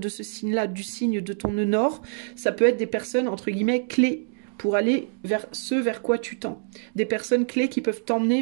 ce signe-là, du signe de ton nœud nord, ça peut être des personnes, entre guillemets, clés pour aller vers ce vers quoi tu tends. Des personnes clés qui peuvent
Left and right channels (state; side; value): silent; left; digital silence